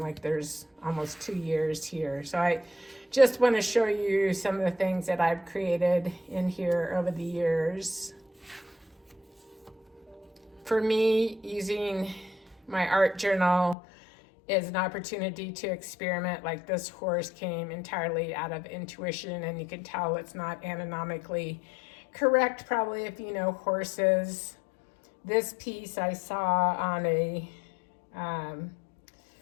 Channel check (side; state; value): right; drops out; at 13.8 s